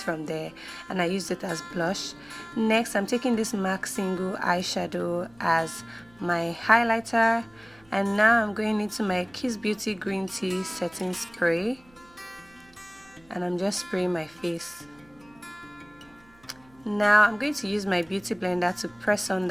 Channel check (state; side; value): noise; right; hum, 29 dB below the sound